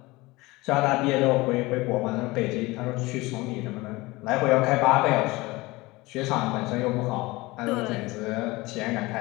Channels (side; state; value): right; quieter; 21.6 dB